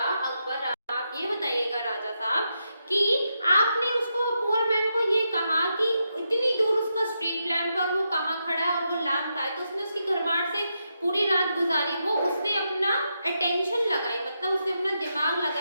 अकबर, आप ये बताइएगा राजा साहब कि आपने उसको, पुअर मैन को ये कहा कि इतनी दूर उसका स्ट्रीट लैम्प पर वो कहाँ खड़ा है और वो लैम्प का है, तो उसने उसकी घरमाट से पूरी रात गुजारी, वो उसने अपना अटेंशन लगाई, मतलब उसने अपना दिमाग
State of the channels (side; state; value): both; inverted; correlation -0.84